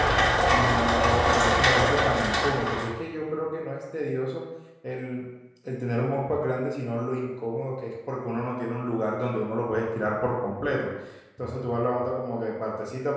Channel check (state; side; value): identical; both; correlation 1.00